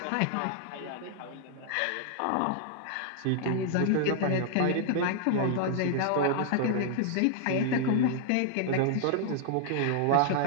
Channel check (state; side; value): different; both; correlation -0.01